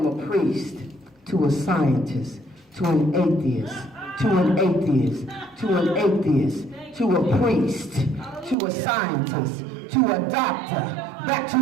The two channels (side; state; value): left; drops out; at 8.6 s